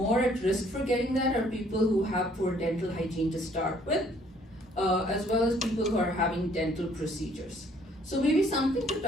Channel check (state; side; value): normal; both; correlation 0.62